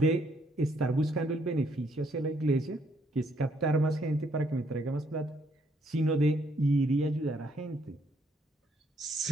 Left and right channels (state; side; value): normal; both; correlation 0.70